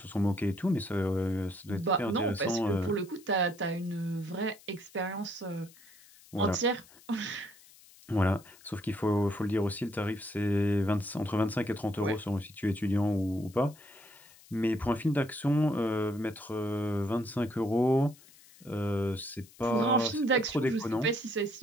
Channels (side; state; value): left; noise; hiss, 24 dB below the sound